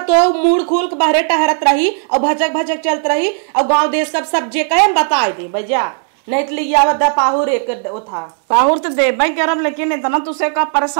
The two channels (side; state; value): left; silent; 61 dB below the other